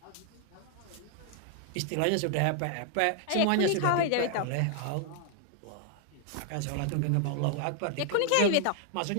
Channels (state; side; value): different; both; correlation 0.00